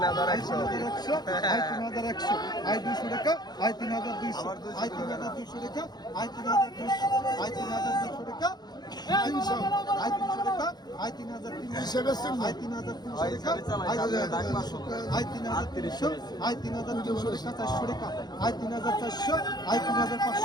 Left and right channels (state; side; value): late; right; 0.20 ms